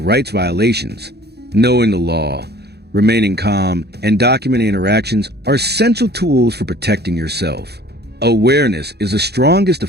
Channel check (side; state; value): left; late; 0.48 ms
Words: rights violations. Knowing the law, remaining calm, and documenting interactions are essential tools for protecting yourself. Awareness is the strongest